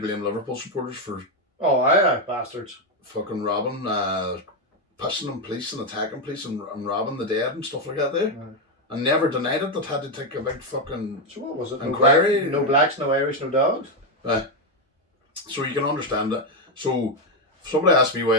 blame Liverpool supporters for... Oh, aye, bastards. Fucking robbing, pushing on police and attacking police and robbing the dead and stuff like that there. And never denied it, that had to take a big fucking so what was it? inquiry. No blacks, no Irish, no dogs? So you can understand that. So if somebody asked me why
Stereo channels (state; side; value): normal; both; correlation 0.06